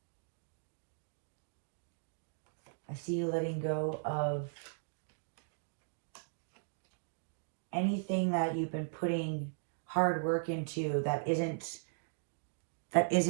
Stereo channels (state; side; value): silent; left; digital silence